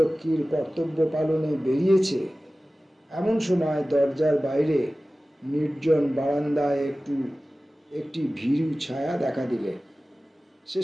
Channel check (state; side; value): normal; both; correlation 0.96